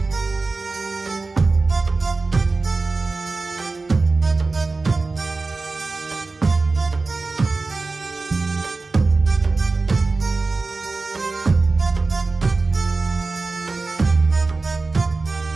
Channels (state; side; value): quieter; left; 3.7 dB